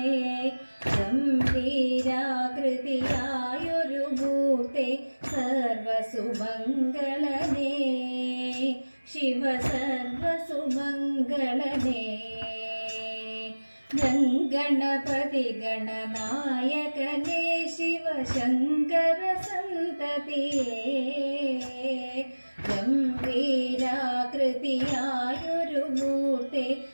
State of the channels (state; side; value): inverted; both; correlation -1.00